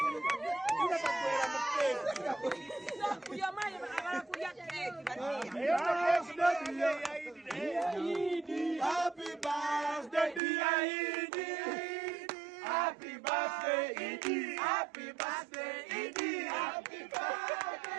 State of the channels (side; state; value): left; drops out; at 10.4 s